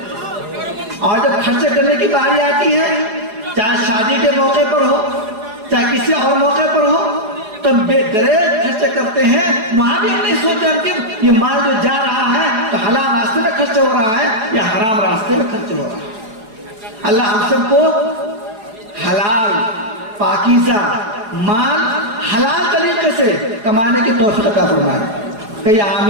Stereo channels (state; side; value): late; left; 4.7 ms